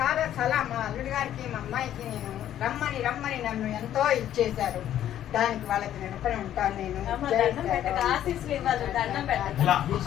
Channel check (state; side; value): quieter; right; 11.4 dB